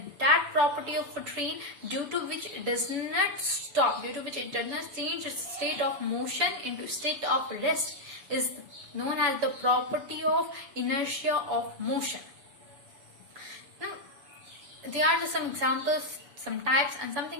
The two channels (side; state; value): left; late; 6.9 ms